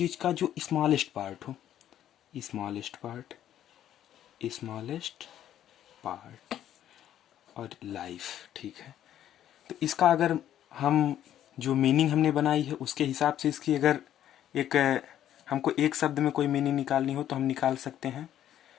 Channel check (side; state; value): right; quieter; 11.3 dB